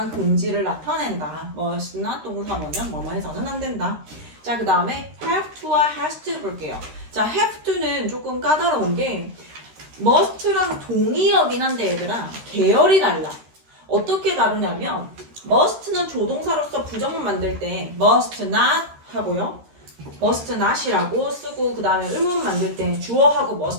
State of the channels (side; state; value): left; late; 13 ms